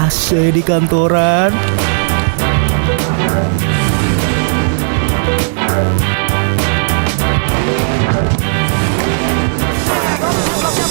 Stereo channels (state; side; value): silent; left; digital silence